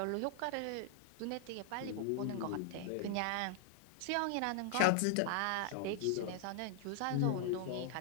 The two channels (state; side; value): different; both; correlation -0.01